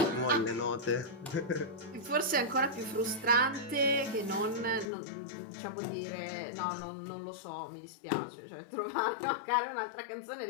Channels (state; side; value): drops out; right; at 4.9 s